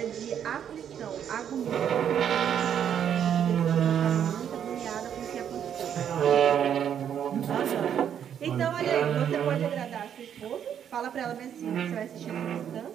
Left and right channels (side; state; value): left; quieter; 9.0 dB